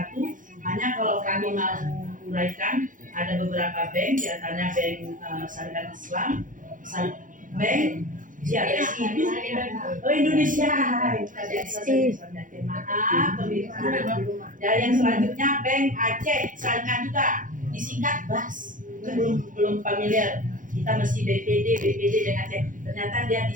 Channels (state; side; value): late; left; 0.38 ms